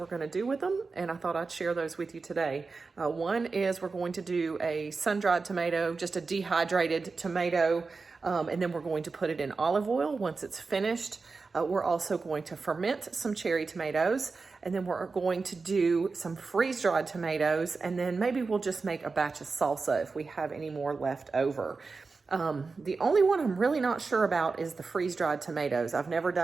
going to do with them, and I thought I'd share those with you today. One is we're going to do a sun-dried tomato, just a dehydrated tomato, and then we're going to put it in olive oil once it's finished. We're also going to ferment some cherry tomatoes, and then we're going to do some freeze-dried tomatoes, and then maybe we'll just make a batch of salsa if we have any more left over. The only one I'm really not sure about is the freeze-dried tomatoes. I've never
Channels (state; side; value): quieter; left; 4.3 dB